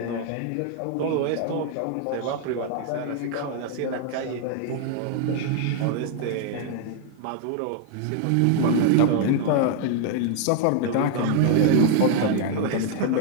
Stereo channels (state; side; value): different; both; correlation 0.00